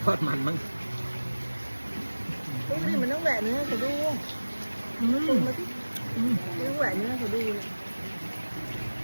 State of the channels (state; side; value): inverted; both; correlation -1.00